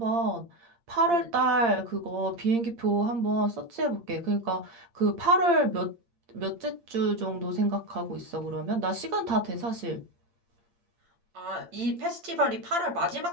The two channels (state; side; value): late; left; 8.7 ms